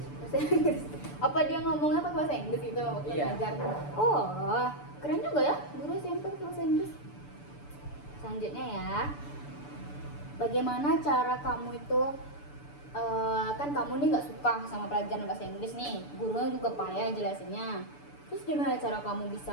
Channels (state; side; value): late; right; 6.9 ms